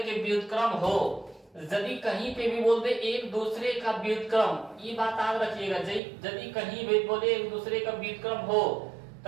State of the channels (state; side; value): drops out; left; at 6.0 s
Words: के व्युत्क्रम हो, यदि कहीं पे भी बोल दे एक दूसरे का व्युत्क्रम, ये बात याद रखिएगा, यदि कहीं भी बोले एक दूसरे का व्युत्क्रम हो